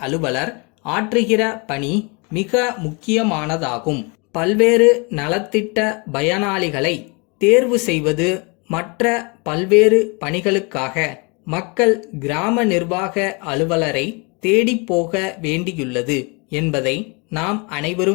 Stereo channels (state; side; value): quieter; right; 30.9 dB